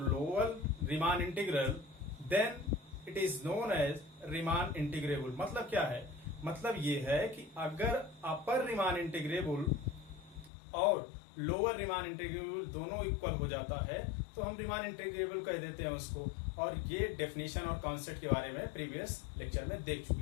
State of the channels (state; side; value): drops out; right; at 10.5 s